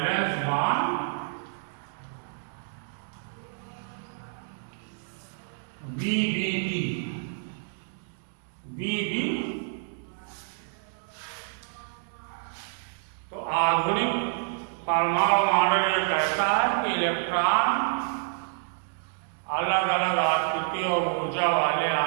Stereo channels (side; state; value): left; silent; digital silence